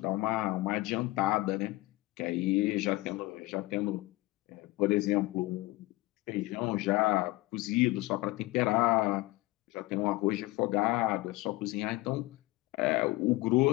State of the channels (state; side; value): quieter; right; 20.1 dB